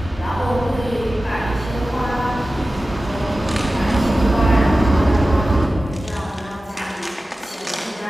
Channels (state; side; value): normal; both; correlation 0.95